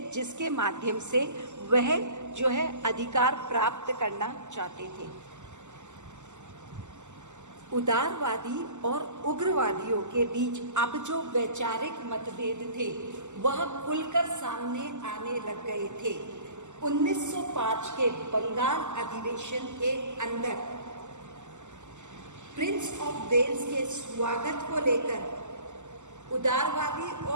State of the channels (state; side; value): late; left; 0.84 ms